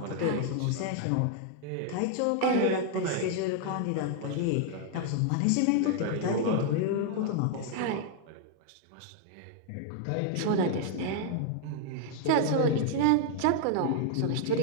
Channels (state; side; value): different; both; correlation 0.00